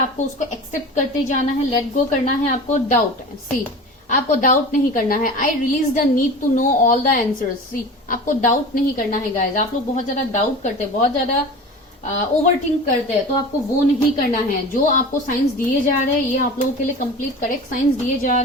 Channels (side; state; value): both; normal; correlation 0.35